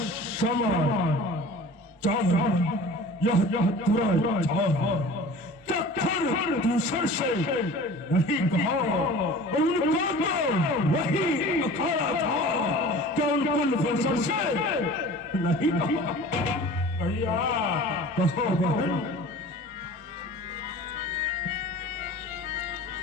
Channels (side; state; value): both; normal; correlation 0.41